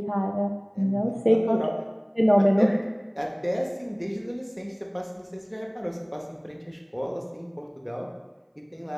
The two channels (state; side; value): identical; both; correlation 1.00